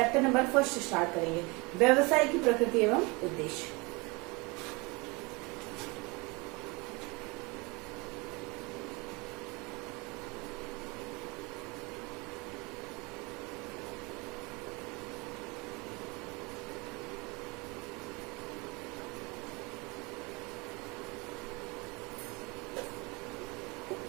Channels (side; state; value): left; quieter; 26.9 dB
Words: नंबर फर्स्ट स्टार्ट करेंगे, व्यवसाय की प्रकृति एवं उद्देश्य।